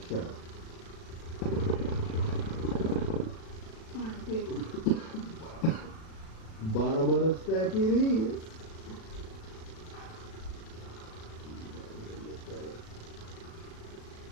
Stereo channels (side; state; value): right; late; 36 ms